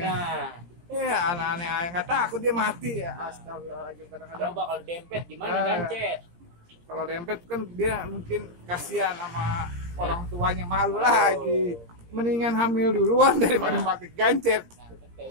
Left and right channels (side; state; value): left; late; 17 ms